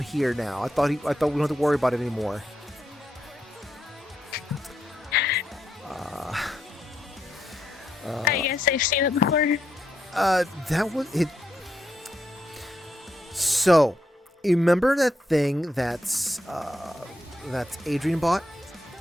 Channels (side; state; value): both; normal; correlation 0.80